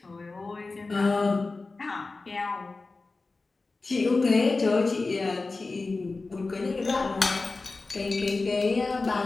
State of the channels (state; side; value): quieter; right; 3.6 dB